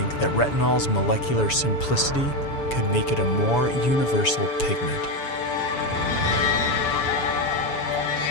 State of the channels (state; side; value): late; right; 7.0 ms